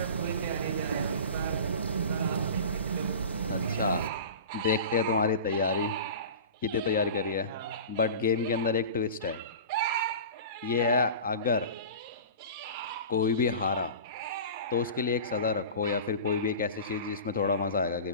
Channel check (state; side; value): inverted; both; correlation -0.35